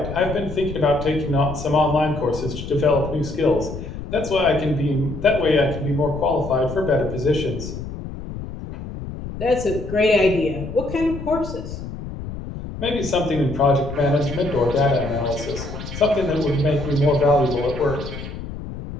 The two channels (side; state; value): left; noise; rumble, 9 dB below the sound